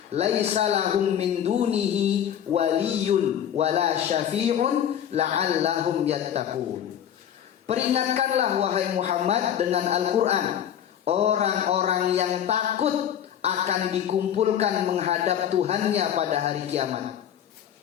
laisa lahum min dunihi waliyyun wala syafi'un la'allahum yattaqun. Peringatkanlah wahai Muhammad dengan Al-Quran orang-orang yang takut akan dikumpulkan menghadap Tuhannya pada hari kiamat.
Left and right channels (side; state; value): right; quieter; 9.7 dB